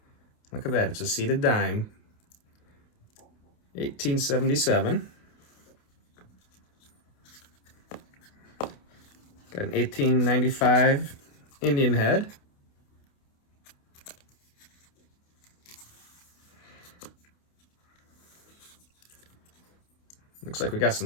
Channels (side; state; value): right; late; 28 ms